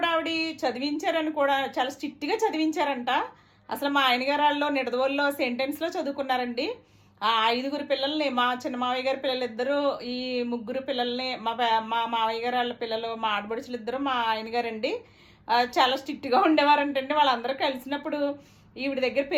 ఆవిడ చదివించారని కూడా చాలా స్ట్రిక్ట్‌గా చదివించారంట. అసలు మా ఆయన గారు ఆళ్ళు నిడదవోలులో సెయింట్ ఆన్స్‌లో చదువుకున్నారండి. ఆ 5 పిల్లల్ని మా చిన్న మావయ్య గారి పిల్లలిద్దరూ, ఈ 3 పిల్లల్ని మా మావయ్య గారు వాళ్ళ పిల్లలు, మా ఆడపడుచులిద్దరూ మా ఆయన గారండి. చాలా స్ట్రిక్ట్‌గా ఉండేవారంటండి. వాళ్ళందరూ కలిసినప్పుడు ఈవిడ దగ్గర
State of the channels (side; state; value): both; identical; correlation 1.00